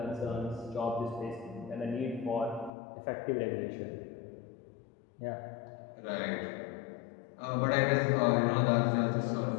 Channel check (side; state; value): right; drops out; at 2.7 s